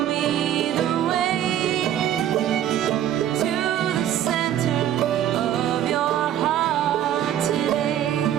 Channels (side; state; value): left; quieter; 11.1 dB